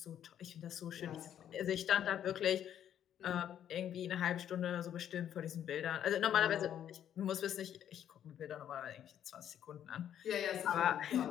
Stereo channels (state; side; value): quieter; right; 10.1 dB